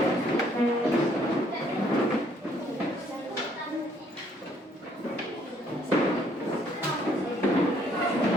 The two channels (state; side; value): normal; both; correlation 0.65